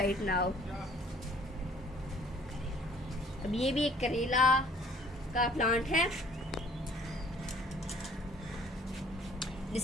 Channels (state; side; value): normal; both; correlation 0.56